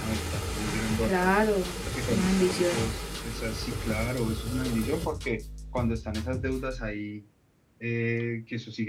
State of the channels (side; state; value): both; identical; correlation 1.00